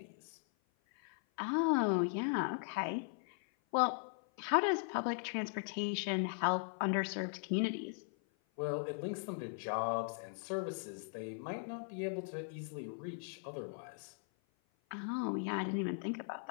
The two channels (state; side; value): silent; right; 52 dB below the other